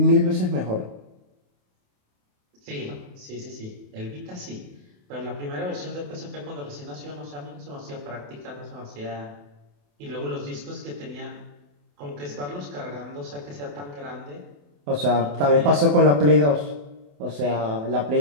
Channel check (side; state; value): left; late; 28 ms